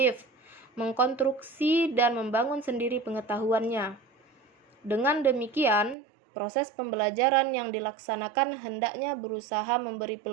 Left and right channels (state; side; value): drops out; left; at 6.0 s